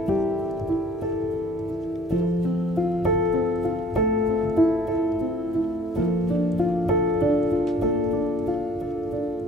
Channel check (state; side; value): normal; both; correlation 0.55